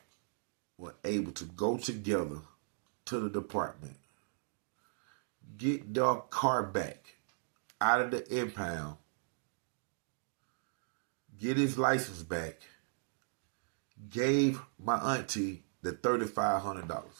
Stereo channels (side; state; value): left; silent; digital silence